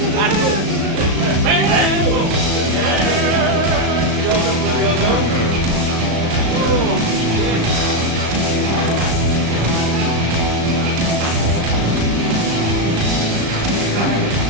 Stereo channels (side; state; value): left; late; 35 ms